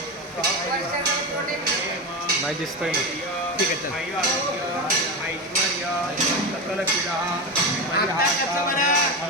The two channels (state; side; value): normal; both; correlation 0.18